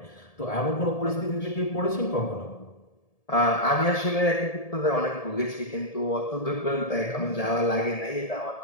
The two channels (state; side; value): late; right; 1.7 ms